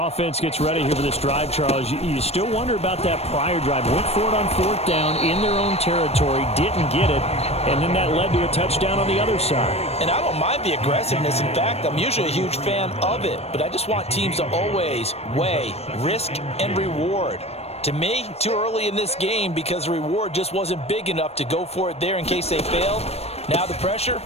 gets ready here for this drive, Charles, you still wonder about that prior drive. Went for it on 4th down in their own territory, didn't get it, and then that led to a touchdown on the other side. And I don't mind the aggressiveness. In fact, I'm usually a huge fan of it, but I just want teams to always weigh risk and reward. To me, too early in this game because the reward just wasn't big enough to go for it there in case they failed. Now the pressure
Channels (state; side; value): late; right; 0.30 ms